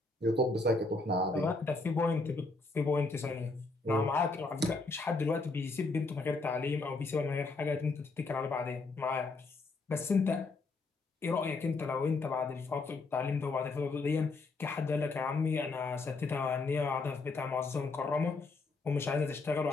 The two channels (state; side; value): quieter; right; 3.6 dB